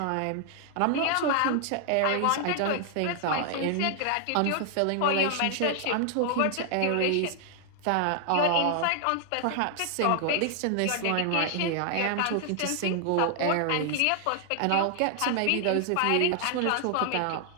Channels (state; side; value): different; both; correlation 0.00